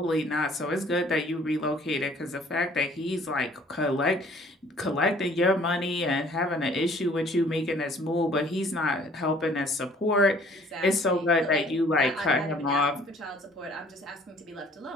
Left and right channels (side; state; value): both; normal; correlation 0.56